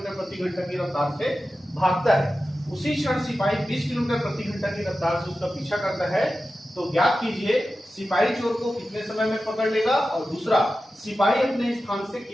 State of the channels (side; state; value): both; normal; correlation 0.93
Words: प्रति घंटा की रफ्तार से भागता है। उसी क्षण सिपाही 20 किलोमीटर प्रति घंटा की रफ्तार से उसका पीछा करता है। तो ज्ञात कीजिए सिपाही चोर को कितने समय में पकड़ लेगा, और दूसरा सिपाही अपने स्थान से